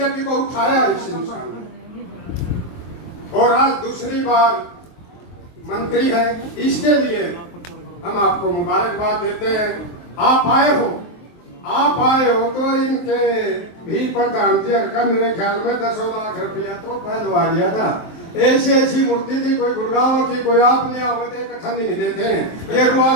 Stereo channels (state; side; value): late; right; 23 ms